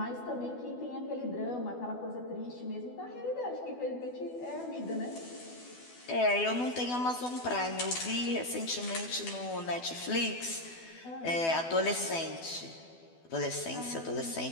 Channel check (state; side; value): late; right; 12 ms